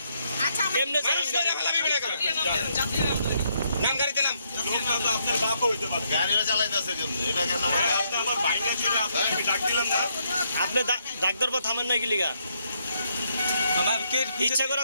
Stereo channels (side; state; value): both; inverted; correlation -0.75